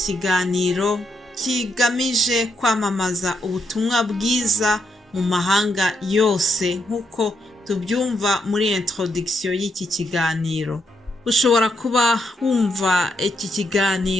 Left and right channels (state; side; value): normal; both; correlation 0.79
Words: kigamije kwamamaza ubutumwa bwiza mu mahanga yose nk'uko tubyumva muri introduction y'iki kiganiro. Ushobora kuba wumva iki